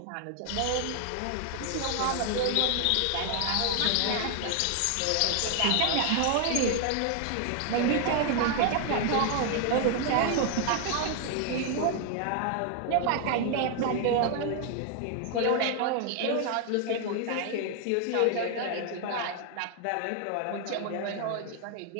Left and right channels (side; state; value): both; different; correlation 0.00